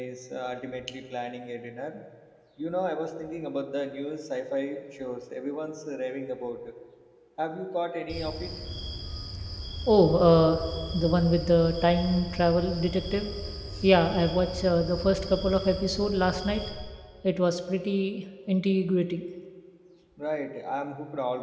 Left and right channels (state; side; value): identical; both; correlation 1.00